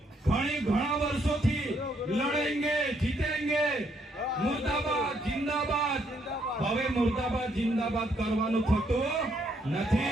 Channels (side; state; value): both; normal; correlation 0.72